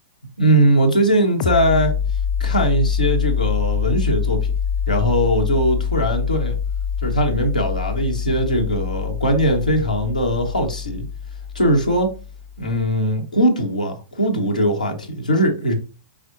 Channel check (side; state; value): both; inverted; correlation -0.31